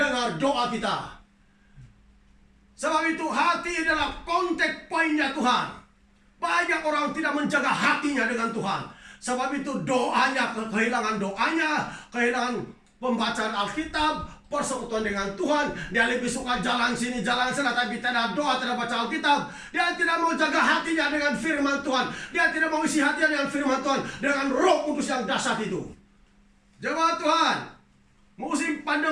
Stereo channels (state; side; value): identical; both; correlation 1.00